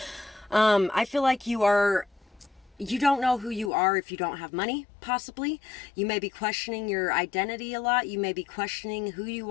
I feel like you don't know who you are if you don't have money, possibly. You may be questioning your identity a lot. You may be questioning who you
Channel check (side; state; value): right; drops out; at 3.7 s